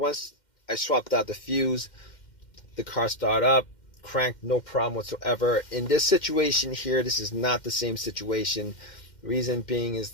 I swapped out the fuse, the car started up, cranked, no problem whatsoever. In this situation here, this is not the same situation. Reason being is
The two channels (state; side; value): late; right; 2.1 ms